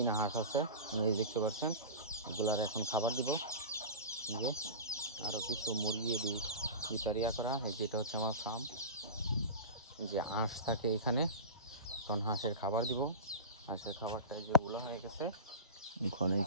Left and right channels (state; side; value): inverted; both; correlation -0.31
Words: হাঁস আছে, এই দেখতে পাচ্ছেন। এগুলার এখন খাবার দিব। যে আরো কিছু মুরগি ভিতরিয়া করা, এই যেটা হচ্ছে আমার ফার্ম। যে হাঁস থাকে এখানে, তখন হাঁসের খাবার দিব। হাঁসের খাবারটা যেগুলো হয়ে গেছে, ওখানে